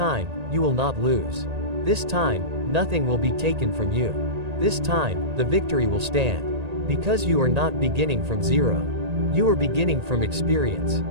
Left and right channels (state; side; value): late; left; 1.8 ms